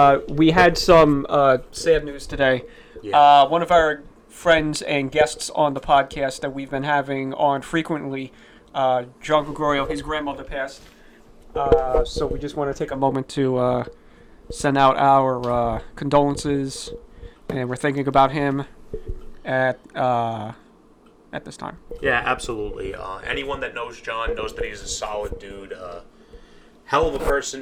we had some sad news today. Yeah. One of our friends and guests on the podcast that we've been having on frequently, John Gregorio, his grandmother passed. So we just want to take a moment to send out our condolences, and we're thinking about him at this time. Yeah, absolutely. Anyone that knows John knows that he's a solid dude. Hell of a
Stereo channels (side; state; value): both; identical; correlation 1.00